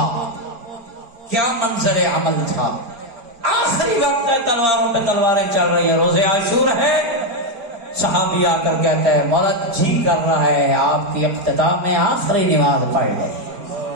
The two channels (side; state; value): left; late; 4.8 ms